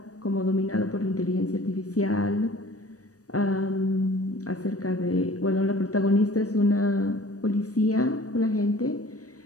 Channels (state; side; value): late; right; 0.66 ms